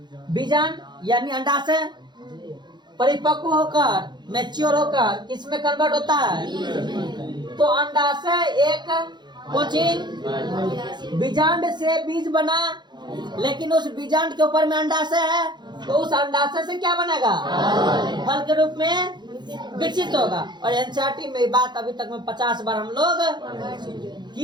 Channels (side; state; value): left; late; 0.21 ms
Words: बीजांड यानी अंडाशय परिपक्व होकर, मैच्योर होकर किसमें कन्वर्ट होता है? तो अंडाशय एक कोचिंग बीजांड से बीज बना, लेकिन उस बीजांड के ऊपर में अंडाशय है, तो उस अंडाशय से क्या बनेगा? फल के रूप में विकसित होगा। और एनसीईआरटी में बात अभी तक में 50 बार हम लोग